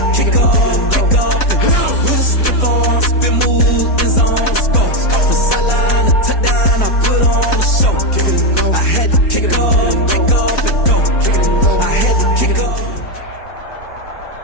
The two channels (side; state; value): right; late; 4.0 ms